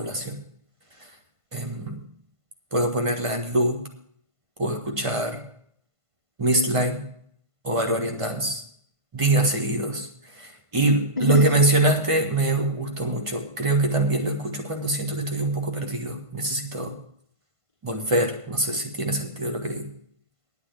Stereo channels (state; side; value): late; left; 1.5 ms